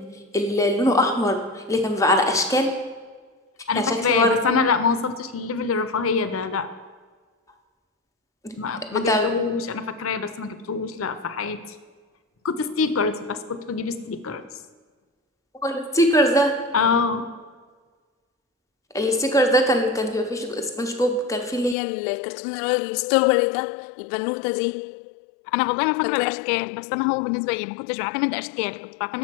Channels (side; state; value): right; drops out; at 21.8 s